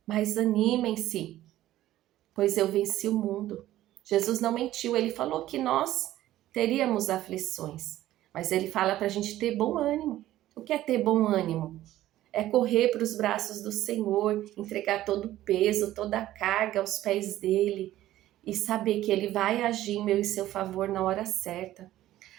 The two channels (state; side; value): quieter; left; 14.3 dB